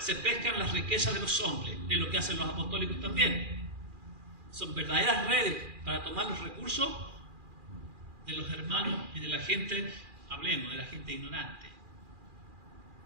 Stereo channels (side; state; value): left; late; 2.4 ms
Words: pescan las riquezas de los hombres, es lo que hacen los apostólicos también. Son verdaderas redes para tomar los recursos de los hermanos y de la gente, hablemos, de la gente ignorante.